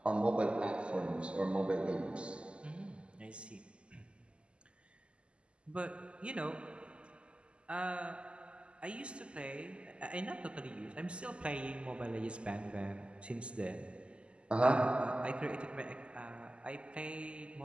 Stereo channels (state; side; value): late; left; 0.053 ms